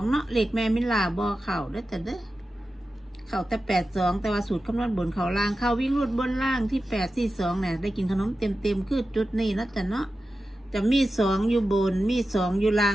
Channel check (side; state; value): both; normal; correlation 0.92